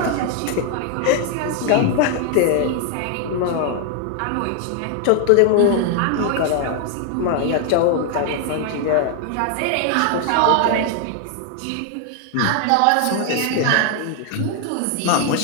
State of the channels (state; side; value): different; both; correlation 0.00